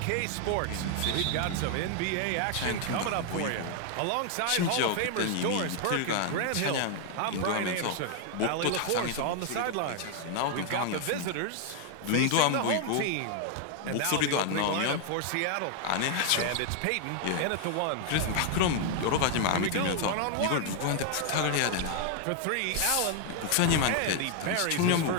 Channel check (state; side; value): different; both; correlation 0.00